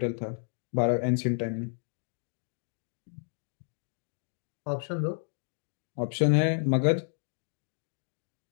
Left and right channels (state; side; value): silent; right; digital silence